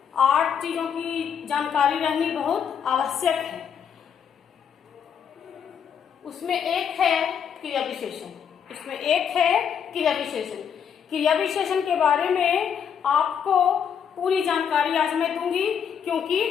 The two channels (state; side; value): quieter; right; 7.7 dB